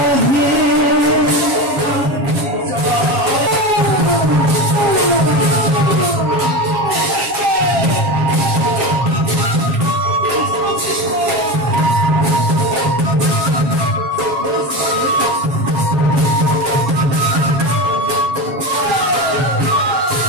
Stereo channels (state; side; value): late; left; 7.4 ms